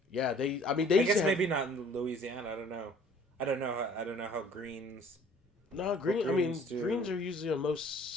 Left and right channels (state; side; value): normal; both; correlation 0.54